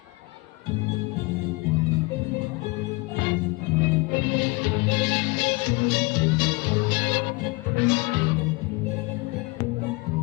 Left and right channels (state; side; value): quieter; right; 26.2 dB